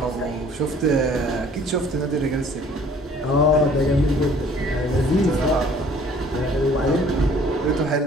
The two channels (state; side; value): normal; both; correlation 0.55